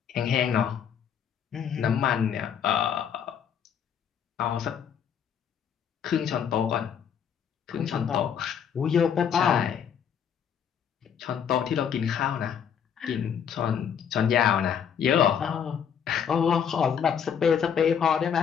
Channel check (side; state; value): right; quieter; 8.0 dB